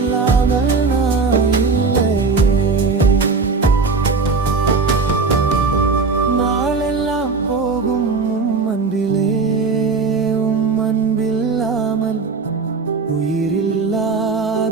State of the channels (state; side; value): quieter; left; 4.4 dB